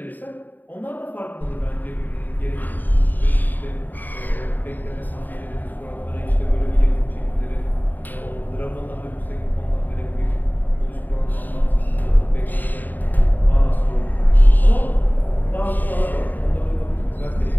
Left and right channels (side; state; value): right; late; 0.088 ms